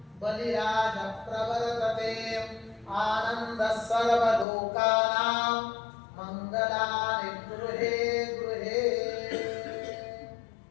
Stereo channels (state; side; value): drops out; right; at 4.5 s